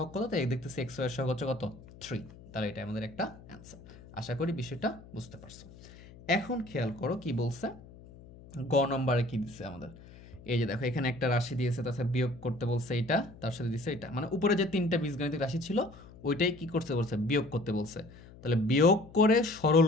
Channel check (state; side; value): noise; left; hum, 20 dB below the sound